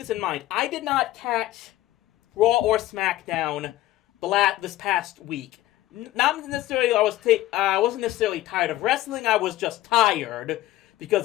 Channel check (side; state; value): right; quieter; 15.6 dB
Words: in mind. I did not catch Raw or SmackDown this past week. Not necessarily I wasn't necessarily tired of wrestling. I was just tired because